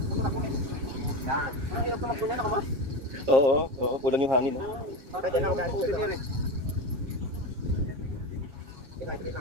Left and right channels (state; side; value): late; left; 7.2 ms